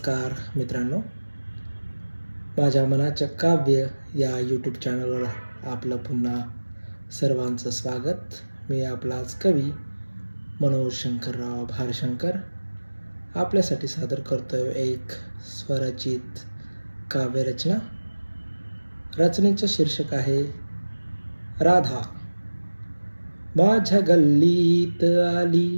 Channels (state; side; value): inverted; both; correlation -1.00